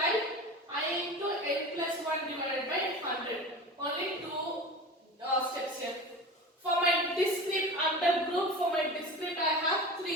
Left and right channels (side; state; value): both; normal; correlation 0.32